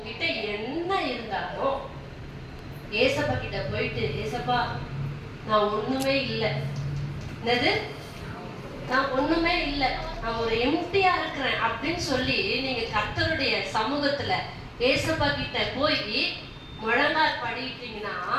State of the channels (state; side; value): identical; both; correlation 1.00